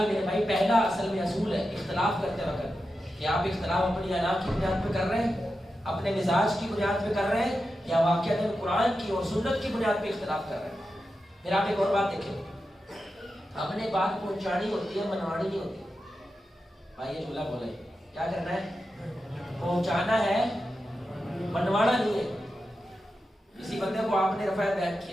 میرے بھائی پہلا اصل میں اصول ہے اختلاف کرتے وقت کہ آپ اختلاف اپنی انا کی بنیاد پہ کر رہے ہیں، اپنے مزاج کی بنیاد پہ کر رہے ہیں، یا واقعہ قرآن کی اور سنت کی بنیاد پہ اختلاف کر رہے ہیں. پھر آپ ایک اور بات دیکھیں، ہم نے بات پہنچانی ہوتی ہے، منوانی نہیں ہوتی. بھائی یہ جملہ بولے کیا کرنا ہے؟ پہنچانا ہے، منوانا نہیں ہے. کسی بندے کو آپ نے رفع بیعت کی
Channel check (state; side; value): normal; both; correlation 0.90